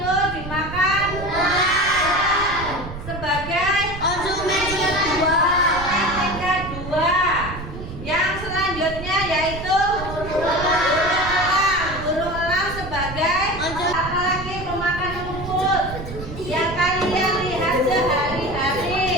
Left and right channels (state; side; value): noise; right; rumble, 10 dB below the sound